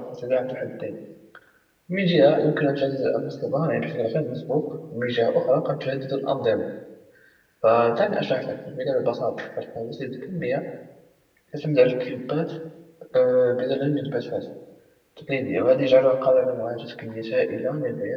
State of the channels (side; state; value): both; identical; correlation 1.00